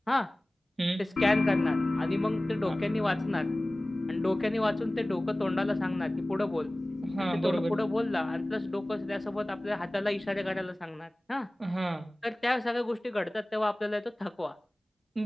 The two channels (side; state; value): both; normal; correlation 0.98